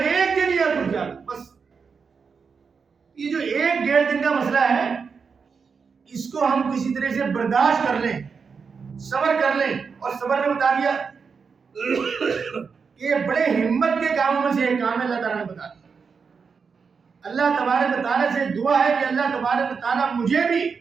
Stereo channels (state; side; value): quieter; left; 5.6 dB